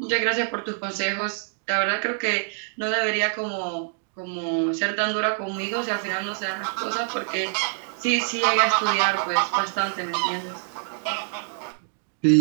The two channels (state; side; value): silent; left; digital silence